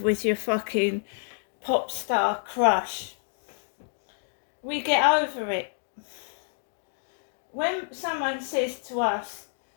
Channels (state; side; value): silent; right; 59 dB below the other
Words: your fucking pop star crush? We get over it. When someone says to us,